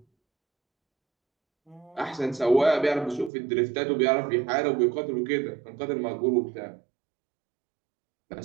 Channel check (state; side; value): drops out; left; at 3.3 s